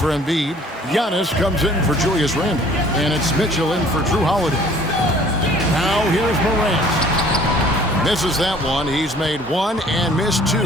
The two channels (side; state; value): both; normal; correlation 0.54